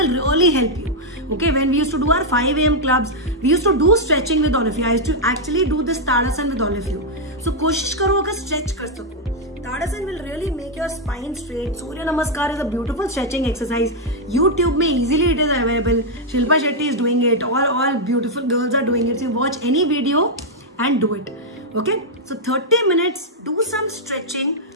really help you. Okay, when we used to do our 5 AM clubs, we used to do stretching with all of you. I used to actually do this Tadasan with all of you. So कोशिश करो अगर stretch कर सको. Tadasan will really make your spine straight. Surya Namaskar is a beautiful stretching exercise. YouTube में easily it is available. Shilpa Shetty is doing it. All beautiful girls are doing it. So watch any video and do it. Okay, so 30 minutes, do some stretching,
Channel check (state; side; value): normal; both; correlation -0.03